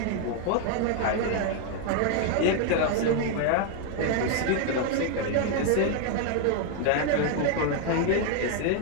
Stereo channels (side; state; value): both; different; correlation 0.00